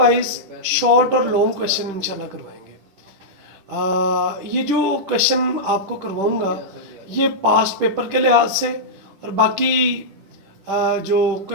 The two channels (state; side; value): late; left; 10 ms